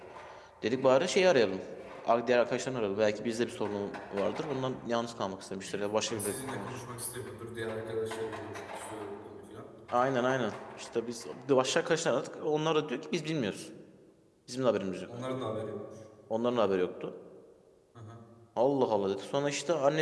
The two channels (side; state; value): both; identical; correlation 1.00